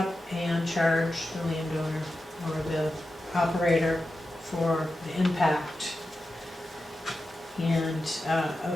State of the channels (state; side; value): normal; both; correlation 0.91